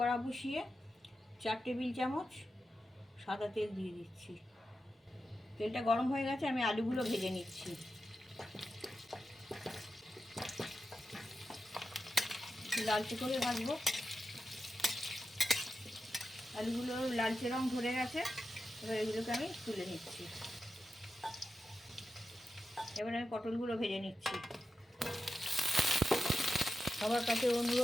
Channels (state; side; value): normal; both; correlation 0.90